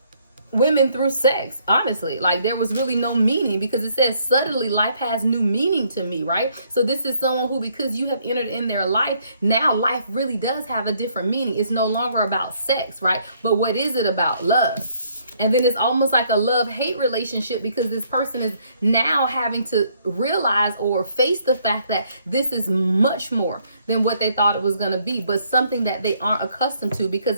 women through sex. Honestly, like there was really no meaning because it says suddenly life has new meaning to me, right? So this is someone who, because you have entered in their life, now life really does have a different meaning. It's no longer about sex, right? But what is it about? Love. And then it's almost like a love-hate relationship because this person is now having to realize or face the fact that this is much more than what they thought it was going to be, but something that they aren't accustomed to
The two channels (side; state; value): both; inverted; correlation -0.68